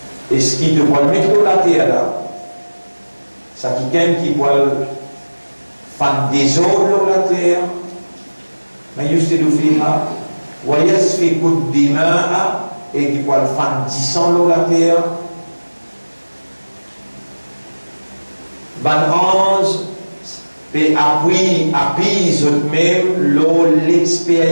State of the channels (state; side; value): inverted; both; correlation -1.00